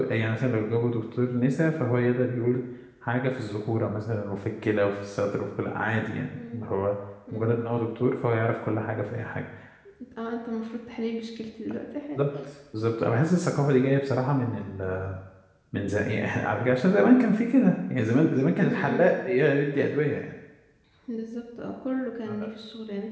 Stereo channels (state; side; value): identical; both; correlation 1.00